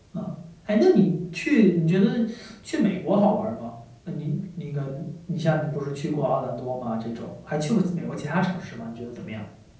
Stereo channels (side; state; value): both; identical; correlation 1.00